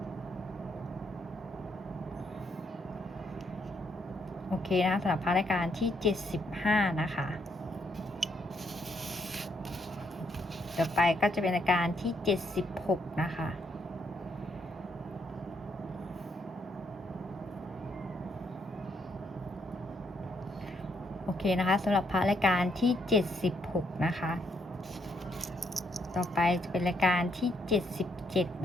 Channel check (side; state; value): both; normal; correlation 0.74